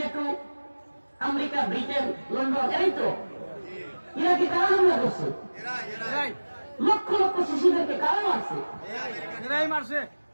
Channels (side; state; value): both; inverted; correlation -1.00